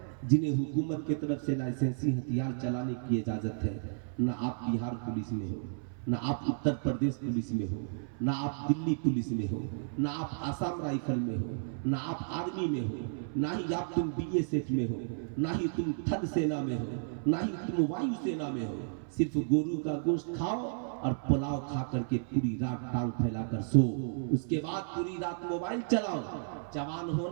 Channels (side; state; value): left; silent; 56 dB below the other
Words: جنہیں حکومت کی طرف سے لائسنسی ہتھیار چلانے کی اجازت ہے؟ نہ آپ بہار پولیس میں ہو، نہ آپ اتر پردیش پولیس میں ہو، نہ آپ دلی پولیس میں ہو، نہ آپ آسام رائفل میں ہو، نہ آپ آرمی میں ہو، نہ ہی آپ تم BSF میں ہو، نہ ہی تم تھل سینا میں ہو، نہ ہی تم وایو سینا میں ہو۔ صرف گورو کا گوشت کھاؤ اور پلاؤ کھا کر کے پوری رات ٹانگ پھیلا کر سو، اس کے بعد پوری رات موبائل چلاؤ۔ جوان